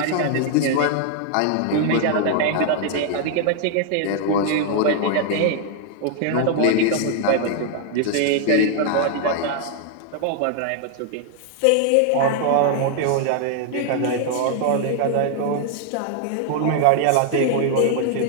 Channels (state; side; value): different; both; correlation 0.00